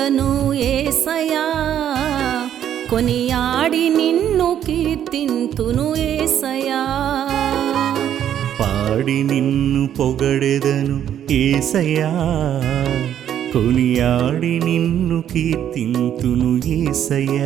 యేసయ్యా, కొనియాడి నిన్ను కీర్తింతును యేసయ్యా. పాడి నిన్ను పొగడెదను యేసయ్యా, కొనియాడి నిన్ను కీర్తింతును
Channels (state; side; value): quieter; left; 10.1 dB